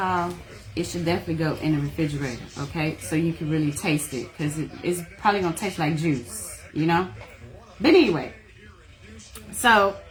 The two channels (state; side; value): identical; both; correlation 1.00